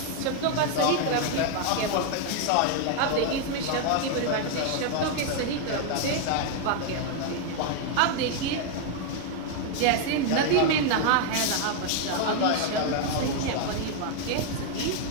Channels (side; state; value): both; different; correlation 0.00